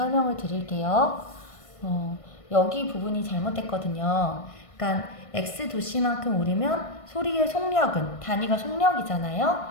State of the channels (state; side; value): late; right; 1.5 ms